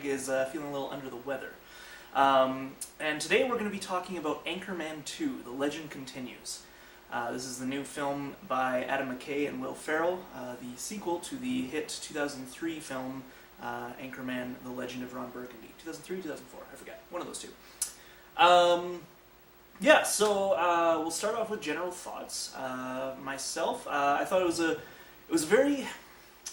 is feeling a little under the weather. And today we're going to be talking about Anchorman 2, The Legend Continues. This is the new film by Adam McKay and Will Ferrell, the sequel to the hit 2003 film Anchorman, The Legend of Ron Burgundy. 2003, 2004, I forget. One of those two. We'll start off with general thoughts. Myself, I thought it was a very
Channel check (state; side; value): identical; both; correlation 1.00